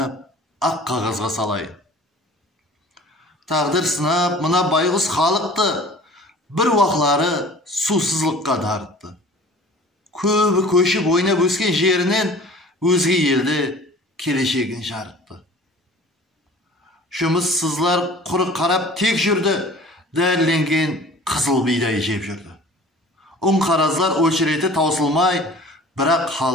ақ қағазға салайын. Тағдыр сынап, мына байғұс халықты бір уақлары сусызлыққа дарытты. Көбі көшіп ойнап өскен жерінен өзге елді келешегін жарытты. Жұмыссызлар құры қарап тек жүрді, дәрленген қызыл бидай жеп жүрді. Қаразлар өлшіреті таусылмай, бірақ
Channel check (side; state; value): both; normal; correlation 0.45